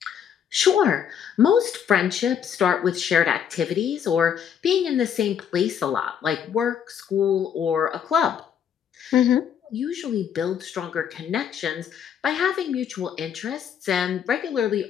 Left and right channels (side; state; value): right; quieter; 8.4 dB